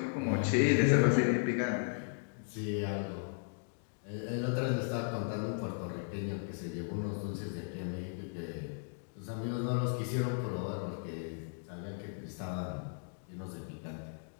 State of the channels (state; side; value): silent; right; digital silence